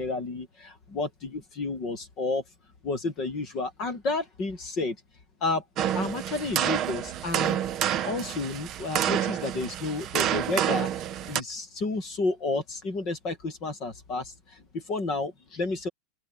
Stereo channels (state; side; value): normal; both; correlation 0.38